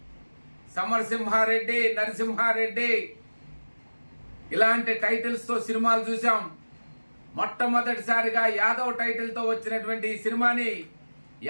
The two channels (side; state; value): both; inverted; correlation -1.00